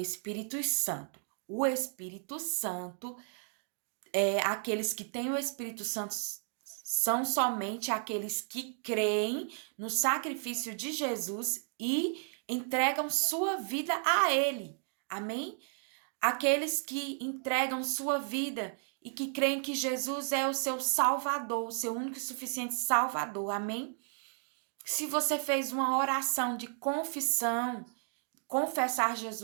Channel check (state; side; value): silent; left; 55 dB below the other